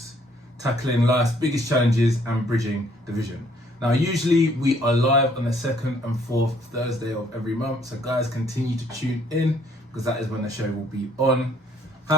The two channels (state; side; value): normal; both; correlation 0.63